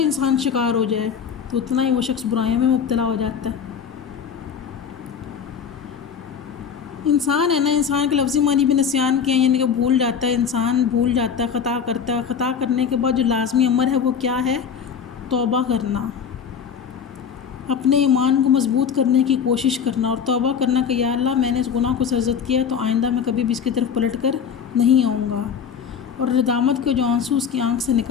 شکار ہو جائے تو اتنا ہی وہ شخص برائیوں میں مبتلا ہو جاتا ہے۔ انسان ہے نا، انسان کے لفظی معنی بھی نسیان کے ہیں، یعنی کہ بھول جاتا ہے، انسان بھول جاتا ہے، خطا کرتا ہے، خطا کرنے کے بعد جو لازمی امر ہے وہ کیا ہے، توبہ کرنا، اپنے ایمان کو مضبوط کرنے کی کوشش کرنا، اور توبہ کرنا کہ یا اللہ میں نے اس گناہ کو سرزد کیا تو آئندہ میں کبھی بھی اس کی طرف پلٹ کر نہیں آؤں گا، اور ندامت کے جو آنسو اس کی آنکھ سے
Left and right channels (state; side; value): quieter; right; 7.1 dB